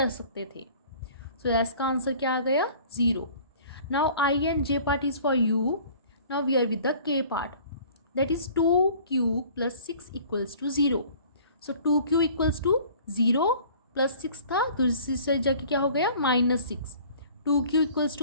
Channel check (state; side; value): inverted; both; correlation -0.49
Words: सकते थे, सो एस का आंसर क्या आ गया 0। Now I and J part is for you, now we are with the K part, that is 2q plus 6 equals to 0, सो 2q इक्वल्स टू 0 प्लस 6 था, दूसरी साइड जाके क्या हो गया -6, 2q इक्वल्स